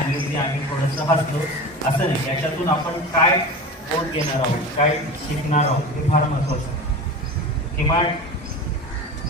आम्ही थोडंसं हसलो. असं नाही, याच्यातून आपण काय बोध घेणार आहोत, काय शिकणार आहोत हे फार महत्वाचं आहे. किमान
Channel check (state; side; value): normal; both; correlation 0.31